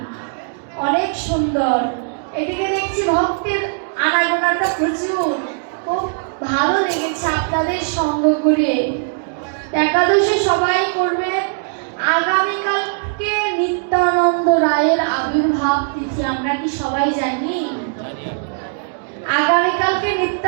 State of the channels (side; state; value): left; silent; 66 dB below the other